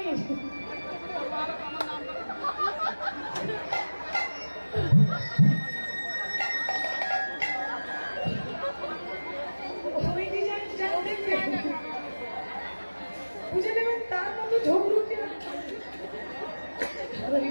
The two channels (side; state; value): both; inverted; correlation -1.00